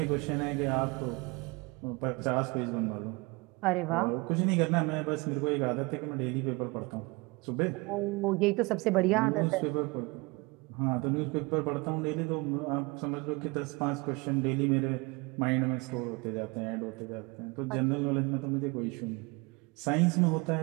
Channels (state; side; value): quieter; left; 26.2 dB